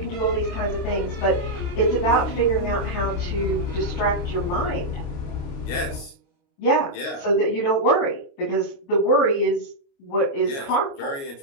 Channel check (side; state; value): right; late; 29 ms